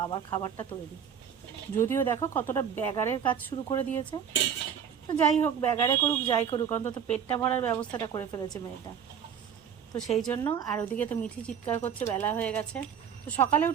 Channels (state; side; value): quieter; left; 8.0 dB